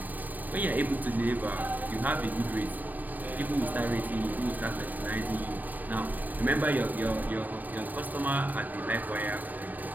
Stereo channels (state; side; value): late; left; 0.084 ms